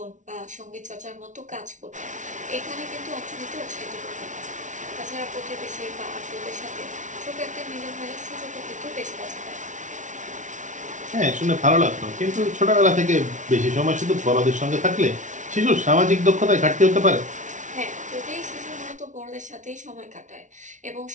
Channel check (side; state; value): left; late; 0.36 ms